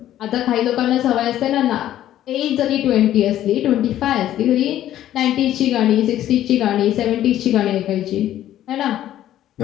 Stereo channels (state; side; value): quieter; right; 12.4 dB